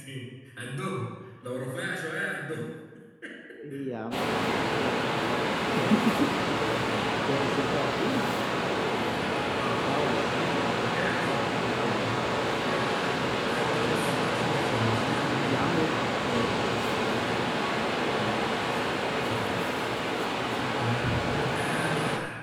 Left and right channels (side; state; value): both; identical; correlation 1.00